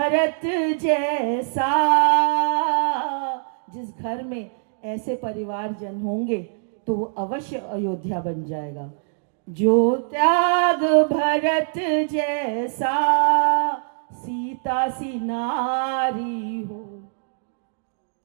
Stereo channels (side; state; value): left; silent; digital silence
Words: जैसा। जिस घर में ऐसे परिवारजन होंगे तो वो अवश्य अयोध्या बन जाएगा। जो त्याग भरत जैसा, सीता सी नारी हो,